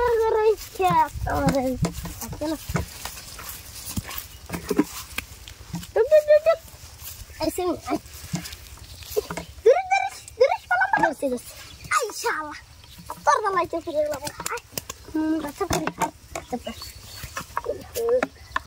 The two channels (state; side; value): identical; both; correlation 1.00